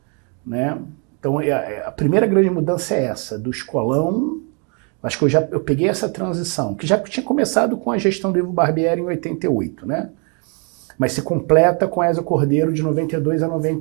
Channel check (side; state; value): left; quieter; 36.5 dB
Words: né? Então, a primeira grande mudança é essa, do escolão. Acho que eu peguei essa transição, que já tinha começado com a gestão do Ivo Barbieri em 88, né? Mas se completa com Ézio Cordeiro de 92 a